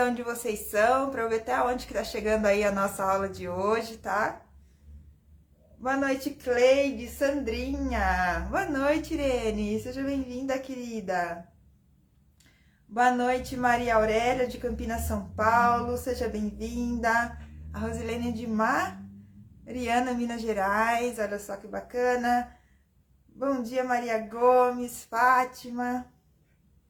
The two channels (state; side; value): identical; both; correlation 1.00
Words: onde vocês são, pra eu ver até onde que tá chegando aí a nossa aula de hoje, tá? Boa noite, Cleide, Sandrinha. Boa noite, Irene. Seja bem-vinda, querida. Boa noite, Maria Aurélia, de Campinas, São Paulo. Seja bem-vinda. A Rosilene de Mariana, Minas Gerais. Olha só que bacana. Bom dia, Maria Gomes, Fátima.